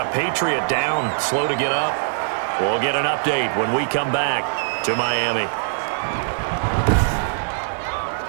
Patriot down, slow to get up. We'll get an update when we come back to Miami.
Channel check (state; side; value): silent; left; 58 dB below the other